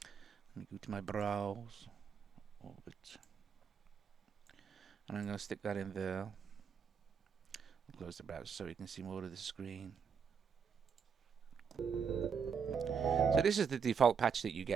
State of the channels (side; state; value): left; quieter; 6.5 dB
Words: Let me go to my browse, Orbit, and I'm going to stick that in there. I'll close the browser so you can see more of the screen. So this is the default patch that you